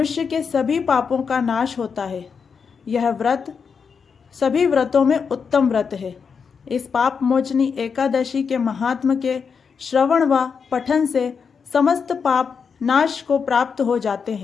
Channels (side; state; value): right; quieter; 6.0 dB